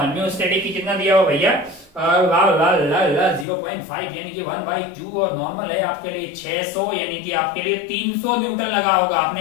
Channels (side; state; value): right; drops out; at 3.5 s